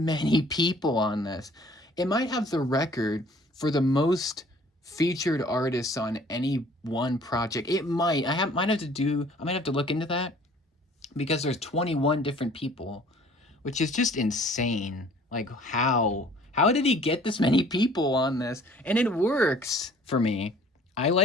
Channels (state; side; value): normal; both; correlation 0.54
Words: people on this. It might have the record for the most featured artists on any one project. It might. Might have to do. I might have to look into that because there's 21 different people, which is just insane. Like how did he get this many people on this? And it works for me. I